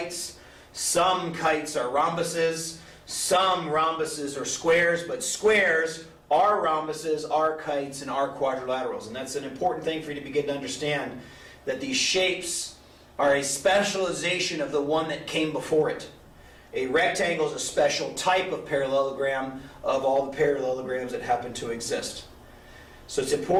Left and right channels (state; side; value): identical; both; correlation 1.00